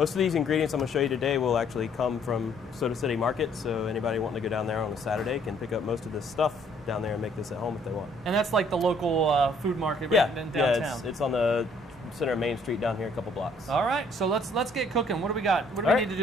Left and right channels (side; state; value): both; normal; correlation 0.63